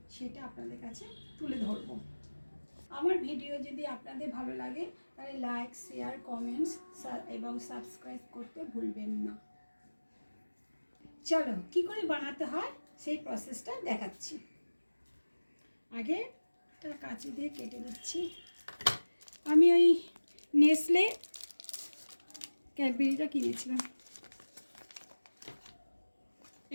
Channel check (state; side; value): inverted; both; correlation -1.00